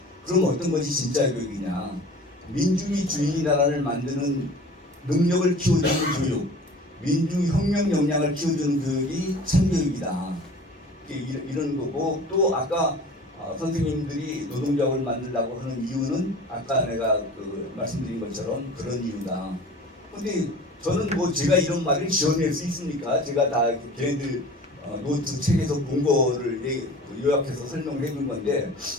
그럼 어떤 것이 진짜 교육이냐? 민중이 주인이 나라를 만드는 능력을 키워주는 교육, 민중혁명 역량을 키워주는 교육이 참교육이다. 이런 거고 또 아까 선생님들이 노동조합을 만들려고 하는 이유는 아까 내가 말씀드린 것처럼 그런 이유다. 근데 저는 뭐 제가 이런 말을 지어낼 수 있습니까? 제가 다 걔네들 노트 책에서 본 거를 요약해서 설명을 해준 건데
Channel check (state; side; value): normal; both; correlation 0.42